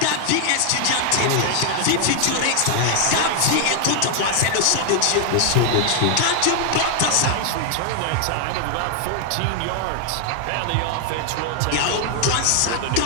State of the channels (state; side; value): different; both; correlation 0.00